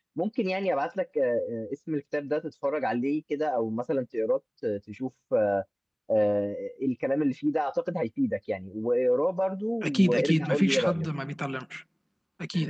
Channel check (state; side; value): identical; both; correlation 1.00